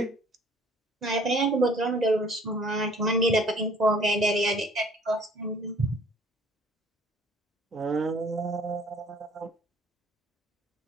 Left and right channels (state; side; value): normal; both; correlation 0.55